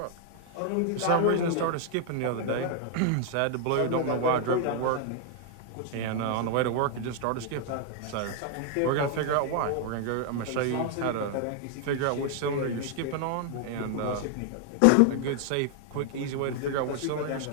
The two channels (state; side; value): different; both; correlation 0.00